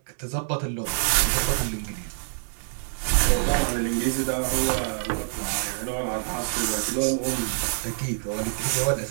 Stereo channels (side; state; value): left; silent; digital silence